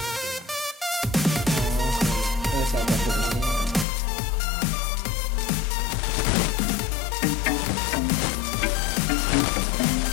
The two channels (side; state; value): right; drops out; at 3.9 s